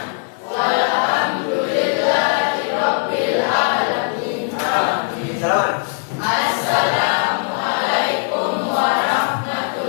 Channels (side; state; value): right; silent; 57 dB below the other